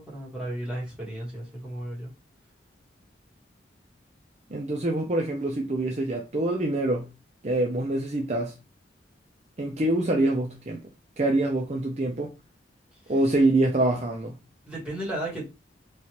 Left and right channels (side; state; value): both; normal; correlation 0.64